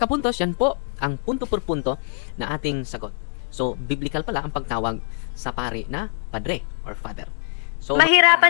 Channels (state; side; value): silent; right; 63 dB below the other